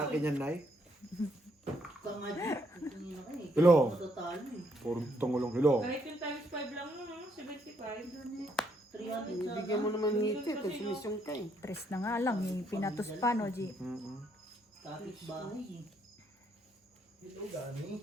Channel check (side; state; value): both; normal; correlation 0.72